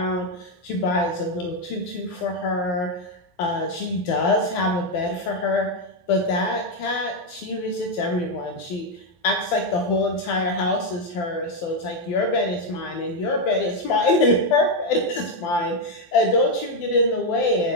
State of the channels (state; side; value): late; right; 12 ms